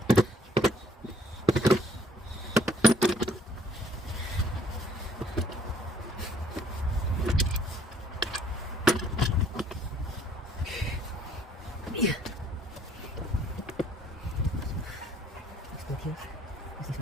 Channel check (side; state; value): both; normal; correlation 0.63